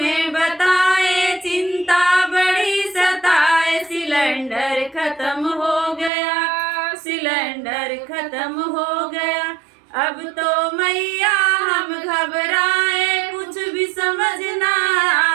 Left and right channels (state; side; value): drops out; left; at 6.1 s